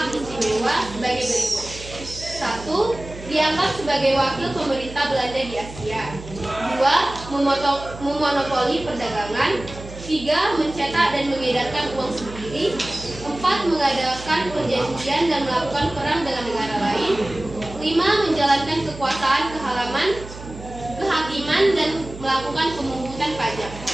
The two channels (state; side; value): noise; right; hum, 14 dB below the sound